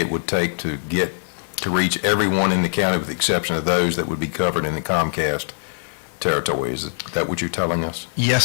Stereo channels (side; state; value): right; silent; digital silence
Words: would take to reach everyone in the county with the exception of those that would be covered in the Comcast territory? Is that what you're telling us? Yes,